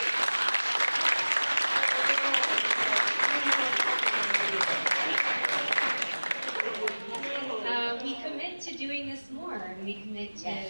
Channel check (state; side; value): inverted; both; correlation -1.00